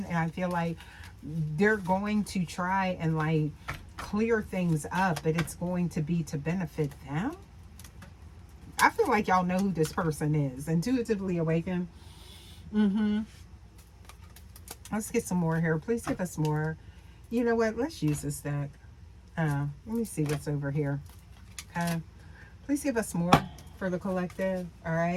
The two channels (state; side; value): identical; both; correlation 1.00